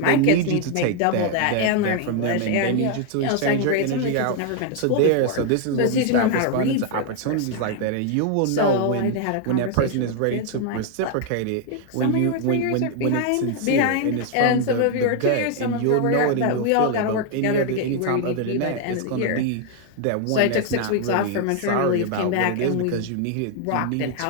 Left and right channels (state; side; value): different; both; correlation 0.00